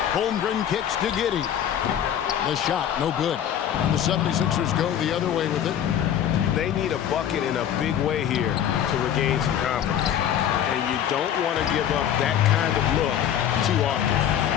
Holmgren kicks to Giddey. The shot, no good. And the 76ers go the other way with it. They need a bucket in a big way here to regain some confidence. And you don't want to give up that kind of look too often.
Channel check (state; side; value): quieter; right; 9.9 dB